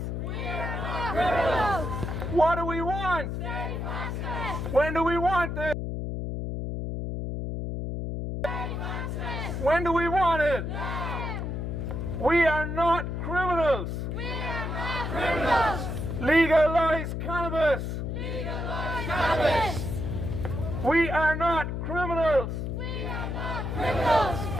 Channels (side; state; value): left; noise; hum, 3 dB below the sound